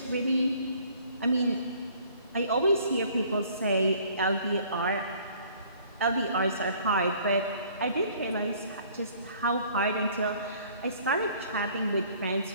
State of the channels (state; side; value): inverted; both; correlation -0.56